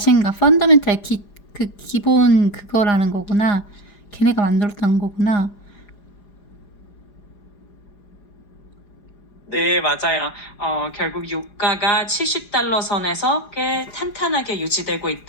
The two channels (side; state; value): right; late; 4.9 ms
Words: 펀더멘탈 그 기본 그거라는 거구나. 걔네가 만들었다는 거구나. 네, 맞아요. 결국 유가가 70달러 선에서 꽤 탄탄하게 유지되고